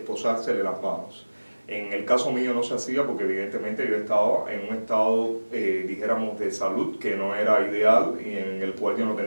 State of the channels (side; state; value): both; inverted; correlation -1.00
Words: las manos. En el caso mío no se hacía porque evidentemente yo estaba en un estado, dijéramos, de salud que no era ideal y en el cual yo no